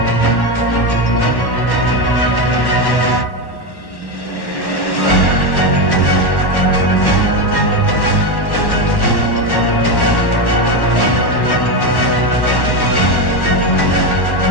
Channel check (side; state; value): right; late; 1.1 ms